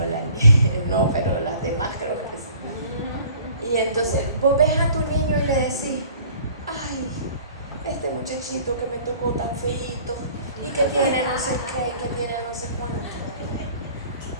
no, pero las demás creo que sí. Y entonces vos ves a tu niño y le decís: ay, este muchachito que me tocó tan feíto, y que tiene no sé qué, que tiene no sé cuánto.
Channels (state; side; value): inverted; both; correlation -0.51